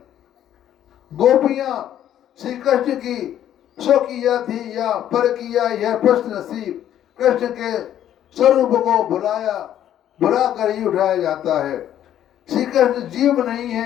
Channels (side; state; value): right; quieter; 11.1 dB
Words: गोपियां श्री कृष्ण की स्वकीय थी या परकीय, यह प्रश्न श्री कृष्ण के स्वरूप को भुला कर ही उठाया जाता है। श्री कृष्ण जीव नहीं